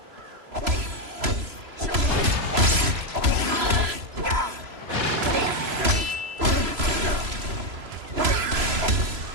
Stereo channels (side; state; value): left; late; 3.0 ms